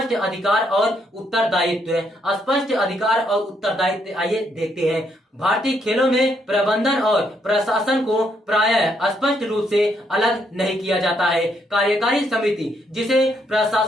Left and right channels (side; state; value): both; normal; correlation 0.74